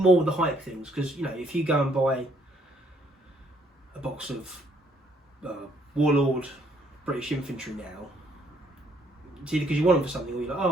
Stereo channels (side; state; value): both; normal; correlation 0.67